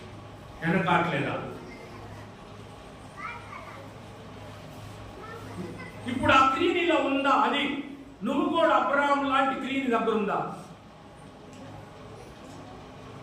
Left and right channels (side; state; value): both; identical; correlation 1.00